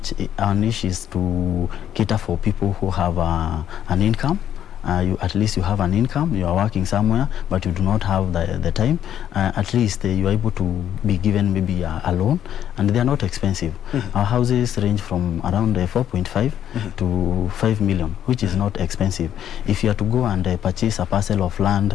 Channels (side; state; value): right; quieter; 10.3 dB